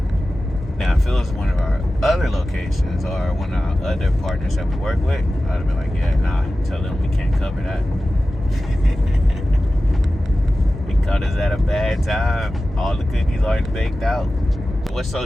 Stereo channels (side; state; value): both; normal; correlation 0.95